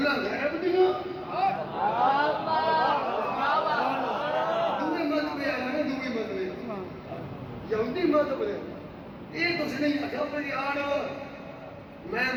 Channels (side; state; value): both; identical; correlation 1.00